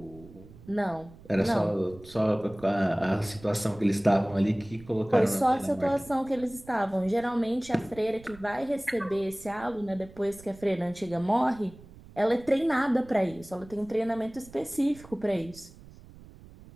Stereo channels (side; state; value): right; noise; rumble, 20 dB below the sound